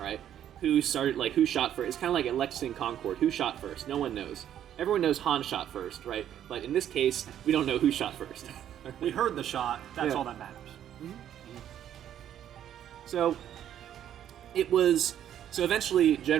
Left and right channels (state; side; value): quieter; left; 10.5 dB